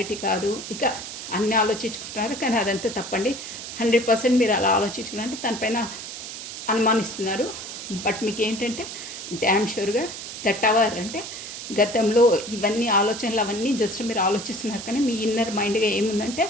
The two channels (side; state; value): right; noise; hiss, 9 dB below the sound